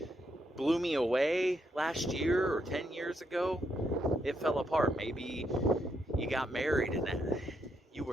blew me away last year or 10 years ago, it fell apart. Maybe you got married and that you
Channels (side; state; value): both; normal; correlation 0.78